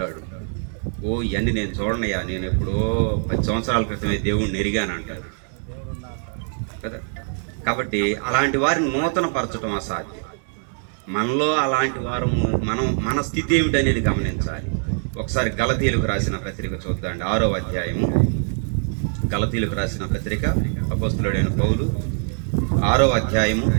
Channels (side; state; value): left; silent; 55 dB below the other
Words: ఓ ఇవన్నీ నేను చూడనయ్యా, నేను ఎప్పుడో 10 సంవత్సరాల క్రితమే దేవుణ్ణి ఎరిగాను అంటారు కదా. కాబట్టి అలాంటి వారిని నూతన పరచడం అసాధ్యం. మనలో అలాంటి వారము మన స్థితి ఏమిటనేది గమనించాలి. ఒకసారి గలతీయులకు రాసిన పత్రిక చూద్దాండి, 6వ అధ్యాయము. గలతీయులకు రాసిన పత్రిక అపోస్తలుడైన పౌలు 6వ అధ్యాయము